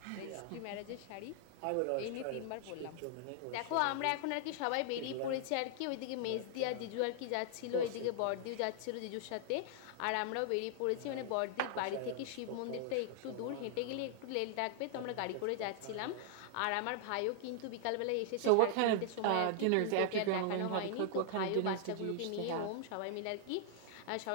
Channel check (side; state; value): both; different; correlation -0.01